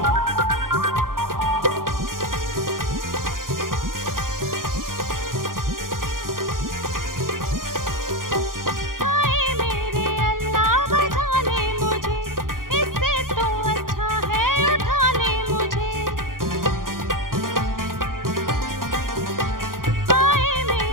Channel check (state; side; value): late; left; 0.90 ms